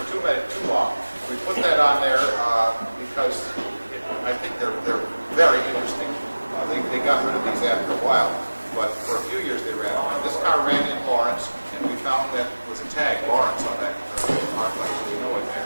too long. We put that on there because I think they're very interesting. They got rid of these after a while, but for a few years they ran on. This car ran in Lawrence, and we found that was a tag, Lawrence, on that arc light, so we know it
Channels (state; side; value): inverted; both; correlation -1.00